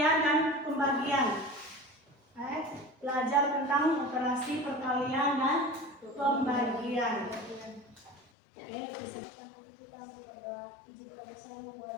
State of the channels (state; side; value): drops out; right; at 8.2 s